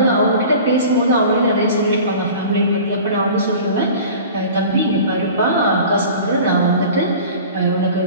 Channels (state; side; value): inverted; both; correlation -0.41